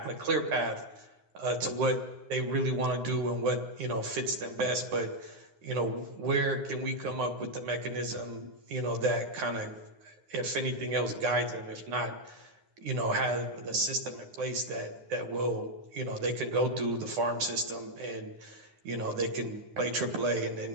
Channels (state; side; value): late; left; 9.7 ms